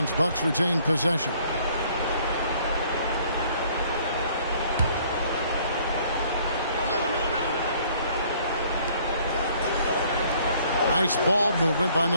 Bucks retain possession. Nice ball movement by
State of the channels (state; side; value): inverted; both; correlation -0.59